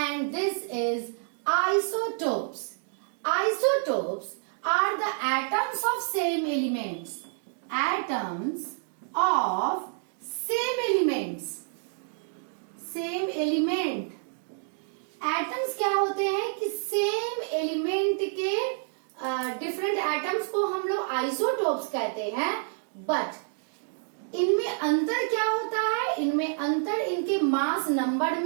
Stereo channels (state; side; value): silent; left; digital silence